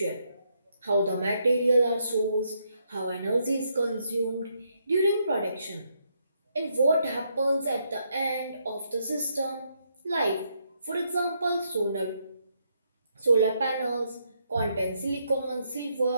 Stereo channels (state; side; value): inverted; both; correlation -0.76